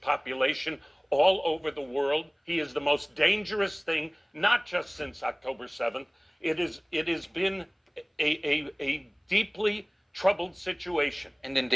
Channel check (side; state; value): both; identical; correlation 1.00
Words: all over the world. He is the most dangerous thing, not just since October 7th. It has been a deeply troubled situation. And